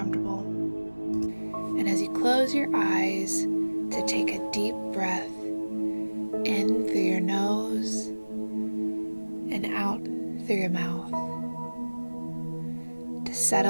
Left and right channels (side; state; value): both; inverted; correlation -1.00